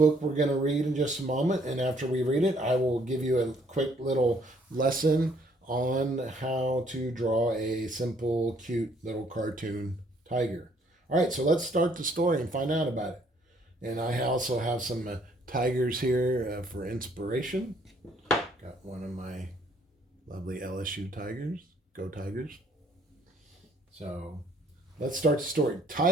we're going to read in just a moment. And after we read it, I will give you a quick little lesson on how to draw a simple, cute little cartoon tiger. All right, so let's start the story and find out about it. And I also have some tigers here for inspiration. Got one of my lovely LSU tigers. Go Tigers. So let's start the story.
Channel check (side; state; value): both; normal; correlation 0.64